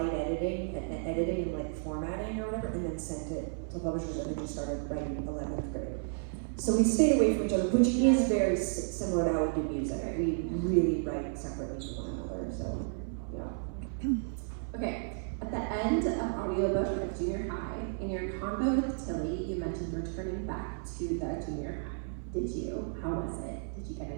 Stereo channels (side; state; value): left; silent; 56 dB below the other